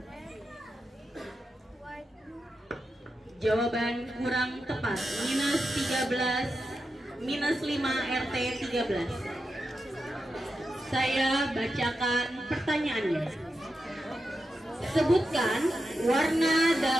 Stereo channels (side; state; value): both; normal; correlation 0.89